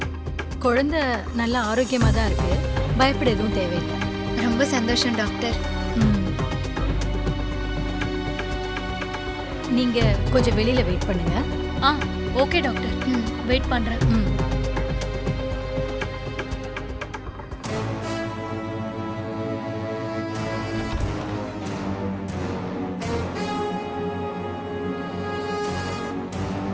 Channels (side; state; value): both; identical; correlation 1.00